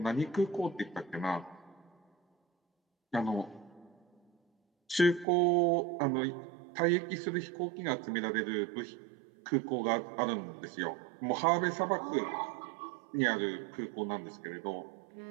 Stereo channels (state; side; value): drops out; left; at 5.2 s